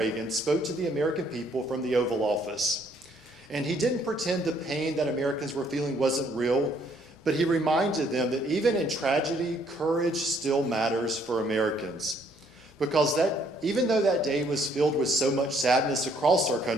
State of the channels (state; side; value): normal; both; correlation 0.66